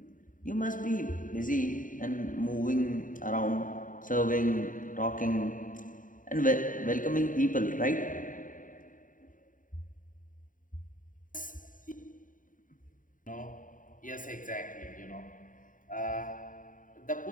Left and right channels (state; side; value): late; right; 0.39 ms